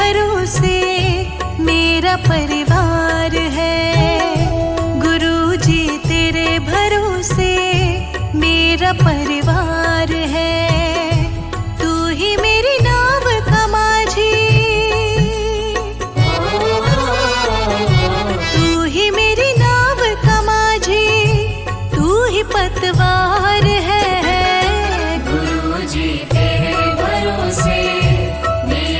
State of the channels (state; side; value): identical; both; correlation 1.00